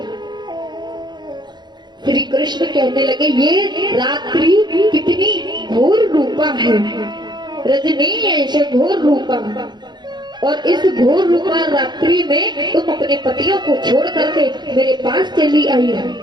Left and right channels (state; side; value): late; left; 0.21 ms